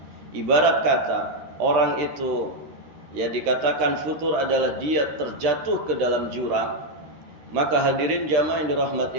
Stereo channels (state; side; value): late; left; 13 ms